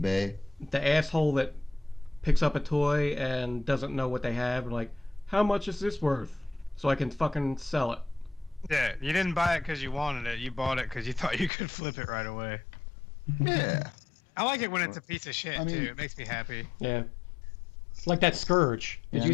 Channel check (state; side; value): drops out; right; at 11.5 s